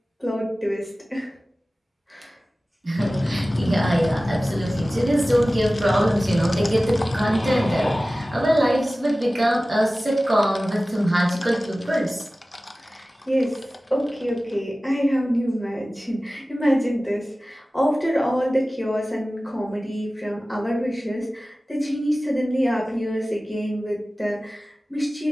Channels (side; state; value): both; normal; correlation 0.97